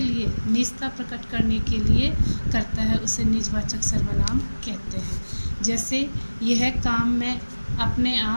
निजता प्रकट करने के लिए करता है उसे निजवाचक सर्वनाम कहते हैं। जैसे यह काम मैं अपने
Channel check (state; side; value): inverted; both; correlation -1.00